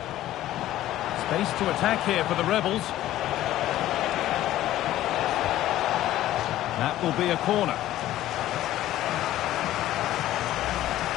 Space to attack here for the Rebels. That will be a corner.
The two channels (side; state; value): right; quieter; 14.1 dB